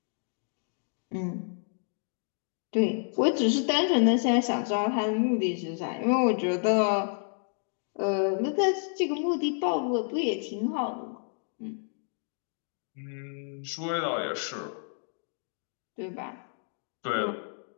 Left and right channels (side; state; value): right; silent; 58 dB below the other